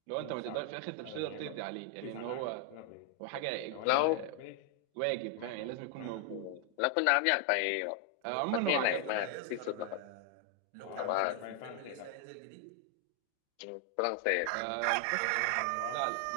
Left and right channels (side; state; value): both; different; correlation 0.00